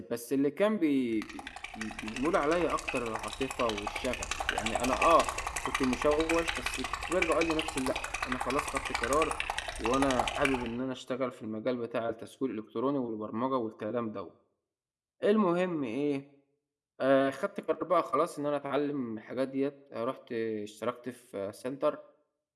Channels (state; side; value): identical; both; correlation 1.00